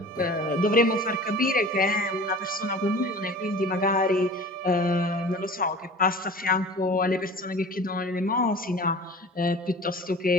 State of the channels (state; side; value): normal; both; correlation 0.40